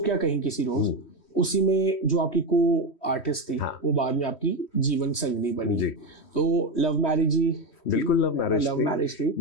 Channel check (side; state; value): right; late; 3.1 ms